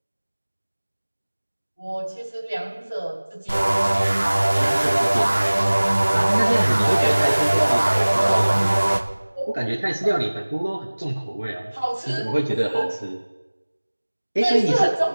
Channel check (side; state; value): both; inverted; correlation -1.00